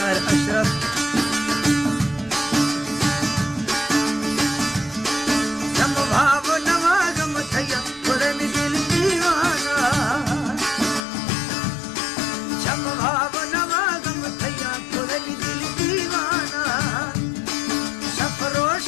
अशरफ। जम भाव नवागम थैया थोड़े में दिल दीवाना, जम भाव नवागम थैया थोड़े में दिल दीवाना।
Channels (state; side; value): drops out; right; at 11.0 s